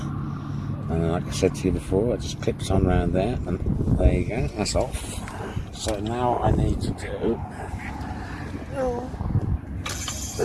and then like I said to you before, it just clips on around there, and there you go, that's off. So now I need to do,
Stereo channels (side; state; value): both; identical; correlation 1.00